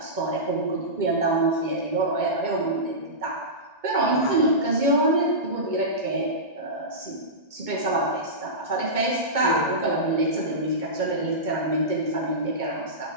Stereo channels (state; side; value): late; left; 2.2 ms